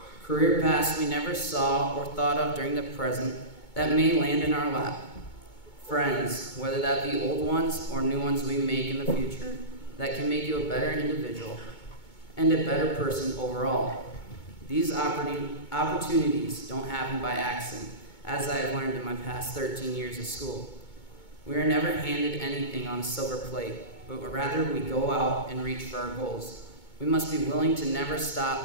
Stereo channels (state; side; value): late; right; 2.2 ms